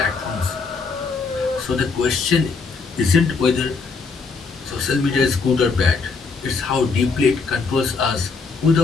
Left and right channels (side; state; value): right; quieter; 4.6 dB